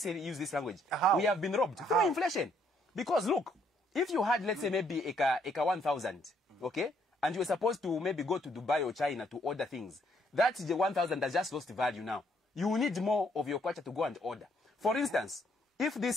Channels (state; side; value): normal; both; correlation 0.69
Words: use this language. We have been robbed through inflation. Because look, if you had, let's say, maybe Eka 1,000, okay, and you were supposed to maybe go to Dubai or China to order things, that's the 1,000 that just lost value now. You need more of your kwacha to go and order. For instance, if